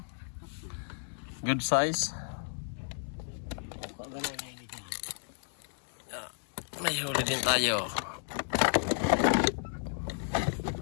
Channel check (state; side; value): silent; right; digital silence